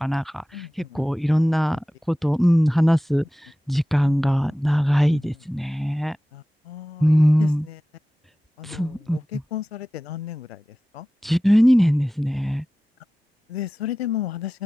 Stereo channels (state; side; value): normal; both; correlation 0.96